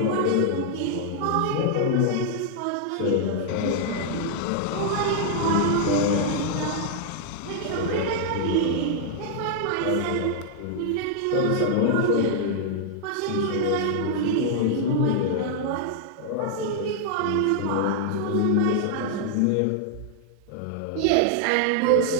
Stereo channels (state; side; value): different; both; correlation -0.01